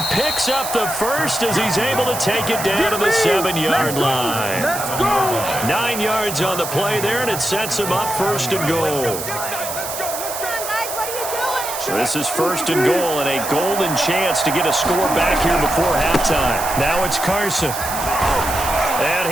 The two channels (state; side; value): noise; right; hiss, 7 dB below the sound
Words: picks up the first as he's able to take it down to the 7-yard line. Let's go. 9 yards on the play there, and it sets him up first and goal. So this is first and goal, and a golden chance to get a score back here before halftime. Now it's Carson. And